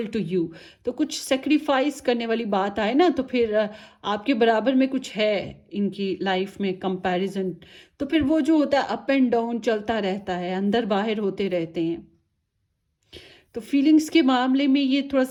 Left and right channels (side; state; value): both; identical; correlation 1.00